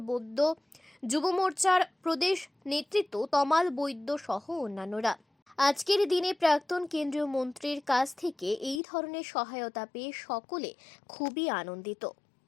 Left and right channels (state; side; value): drops out; right; at 8.8 s